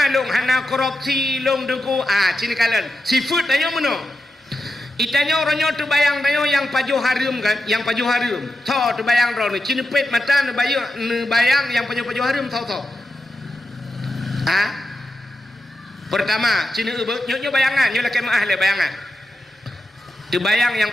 long hana korupsi long deku. Cini kalian seafood tanya mana? Itanya orangnya tu bayang tanya yang pajuh harim kan, yang pajuh harim. So tu bayang orang ni cini pet mata ni bayang yang pajuh harim so. Pertama cini nyo bayangan nyo laki maah le bayangan. Tu bayang yang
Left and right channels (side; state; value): both; normal; correlation 0.89